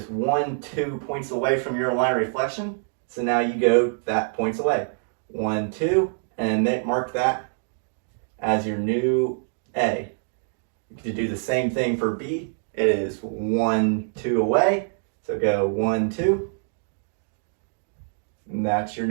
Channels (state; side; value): silent; left; 62 dB below the other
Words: 1, 2 points away from your line of reflection. So now you go that points away. 1, 2, and then mark that as your new A. You can do the same thing for B. It is 1, 2 away. So go 1, 2. And that's your